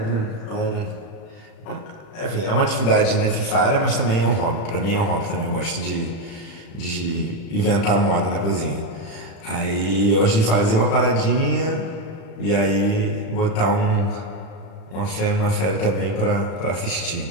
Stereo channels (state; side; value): late; right; 36 ms